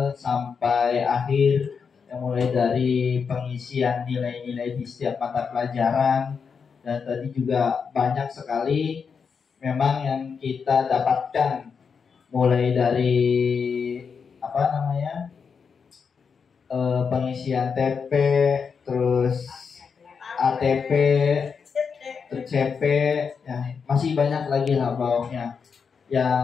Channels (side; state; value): right; quieter; 6.0 dB